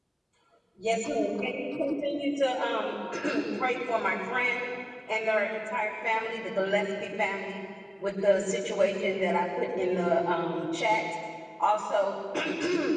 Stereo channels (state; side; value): identical; both; correlation 1.00